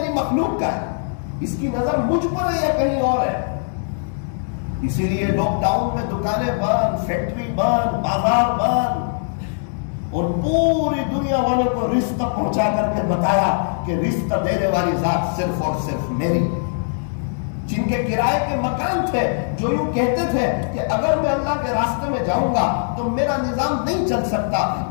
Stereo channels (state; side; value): silent; right; digital silence